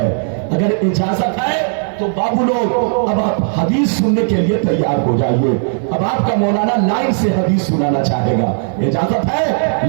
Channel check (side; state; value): left; silent; digital silence